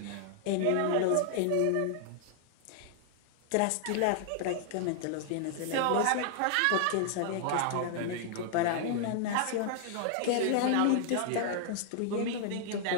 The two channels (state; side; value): different; both; correlation 0.00